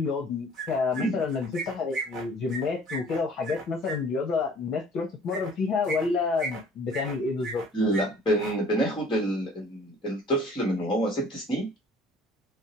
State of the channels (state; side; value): normal; both; correlation 0.52